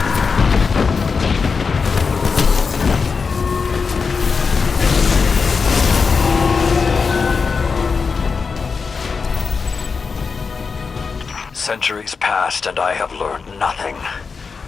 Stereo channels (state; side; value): quieter; right; 5.1 dB